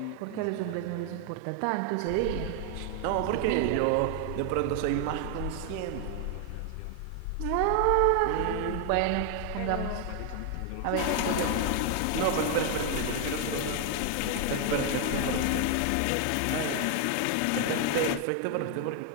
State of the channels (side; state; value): both; different; correlation 0.00